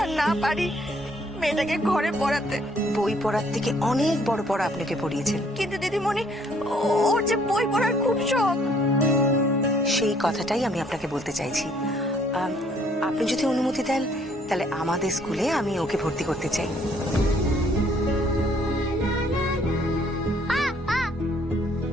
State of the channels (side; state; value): both; normal; correlation 0.64